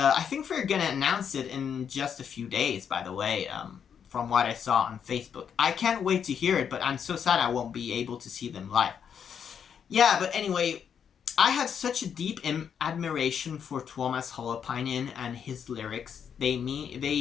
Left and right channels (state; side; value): quieter; right; 7.7 dB